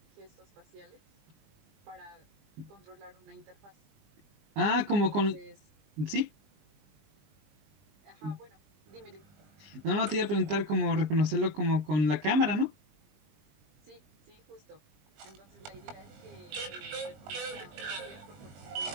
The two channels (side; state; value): left; late; 20 ms